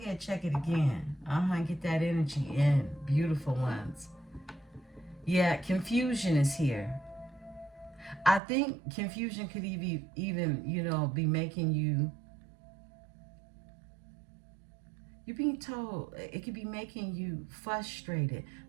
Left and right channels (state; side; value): drops out; left; at 8.4 s